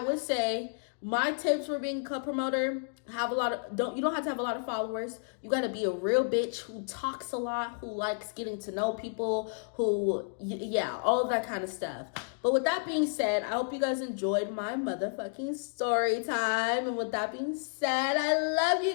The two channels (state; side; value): silent; right; digital silence